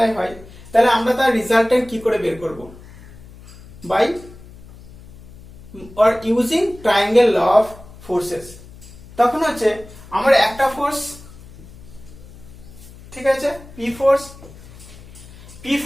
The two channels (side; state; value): left; noise; hum, 19 dB below the sound